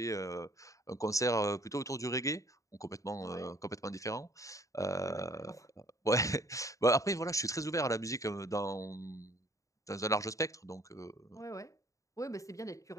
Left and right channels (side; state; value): right; late; 0.16 ms